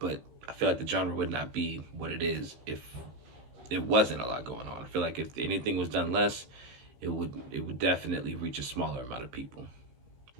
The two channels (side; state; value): left; late; 16 ms